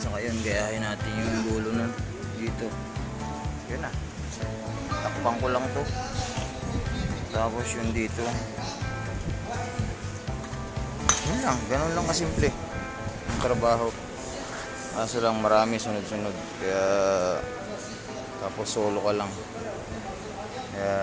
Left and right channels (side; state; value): both; identical; correlation 1.00